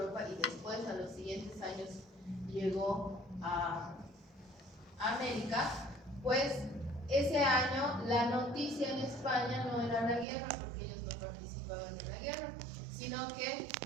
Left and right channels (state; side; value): drops out; left; at 10.2 s